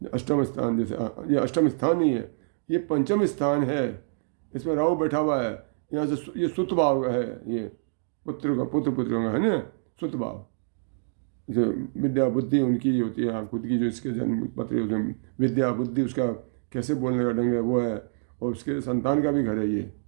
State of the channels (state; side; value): silent; left; digital silence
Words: स्थान, जैसे ये अष्टम स्थान नहीं है, ये पंचम स्थान है। इसमें राहु बैठा हुआ है। यहाँ से ये सुत भाव है, ये पुत्र पुत्रियों का, है ना, सुत भाव। जैसे विद्या बुद्धि उनकी होती है, खुद की जो इसके जन्म पत्र उसमें विद्या बुद्धि, उसका कैसे बोलने का ढंग है वो है, और उसके संतान का भी घर है ये।